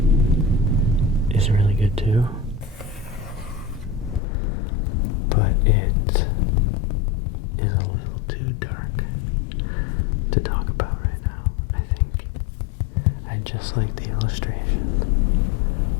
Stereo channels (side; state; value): right; drops out; at 4.2 s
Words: is really good too, but it is a little too dark to talk about right now, I think. I just like the illustration.